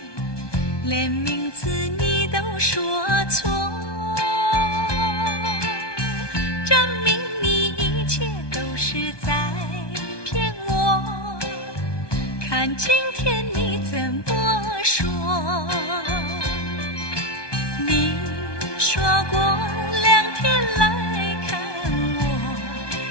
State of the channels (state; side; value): late; right; 1.2 ms